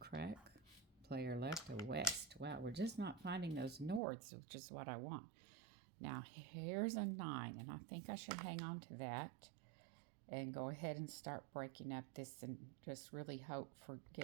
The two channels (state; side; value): drops out; left; at 4.0 s